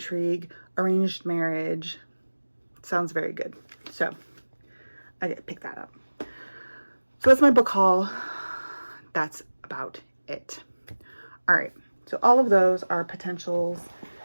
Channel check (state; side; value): inverted; both; correlation -1.00